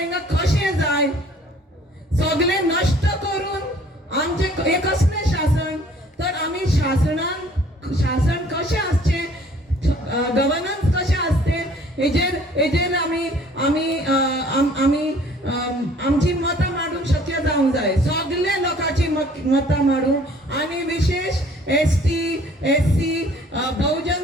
कशें जाय सगळे नश्ट करून आमचे हे कसलें शासन तर आमी शासन कशें आसचें गव्हर्नन्स कशें आसचें हेजेर आमी आमची मतां मांडूंक शक्य जावंक जाय सगळे लोकांची मतां मांडूंक आनी विशेष ST SC बहुजन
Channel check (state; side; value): normal; both; correlation 0.55